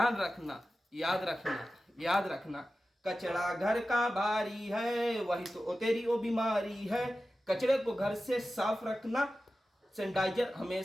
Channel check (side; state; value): both; normal; correlation 0.94